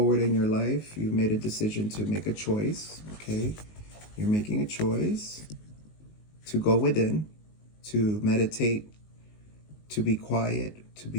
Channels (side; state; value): right; late; 19 ms